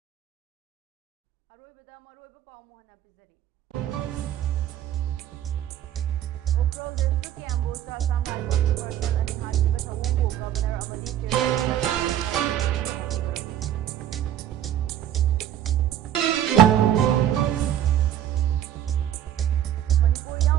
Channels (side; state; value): left; quieter; 11.1 dB